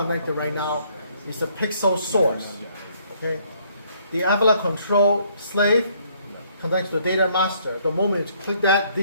right now is a pixel source. Okay? The Avila control slave connects to the data master. The moment you click that,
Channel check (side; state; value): both; inverted; correlation -0.66